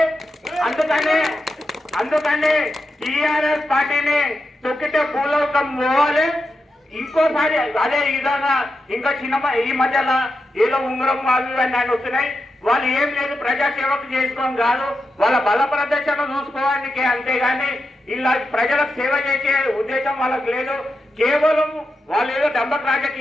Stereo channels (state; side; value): normal; both; correlation 0.88